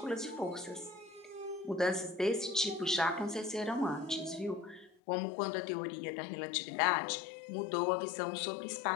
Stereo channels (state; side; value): drops out; right; at 4.9 s